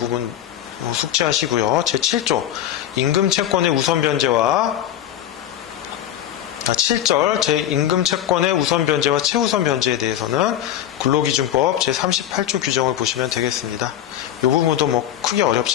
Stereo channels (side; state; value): right; quieter; 11.4 dB